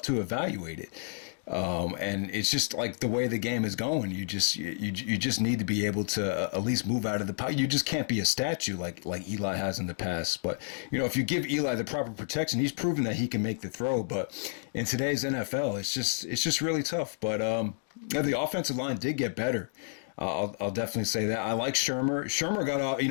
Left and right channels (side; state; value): right; silent; digital silence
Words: to evaluate it. And it's just like the way the game is going. You just need to be able to at least move out of the pocket. You just can't be a statue like Eli has in the past. But if you give Eli the proper protection, he's proven that he can make the throw. But in today's NFL, it's just really tough. But the offensive line did get better. I'll definitely say that. I like Shermer. Shermer got off.